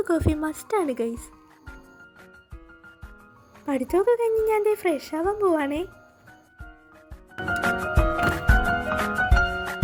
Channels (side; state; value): both; identical; correlation 1.00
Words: കോഫി മസ്റ്റാണ് ഗൈസ്. പഠിത്തമൊക്കെ കഴിഞ്ഞ് ഞാൻ ഫ്രഷ് ആവാൻ പോവാണേ.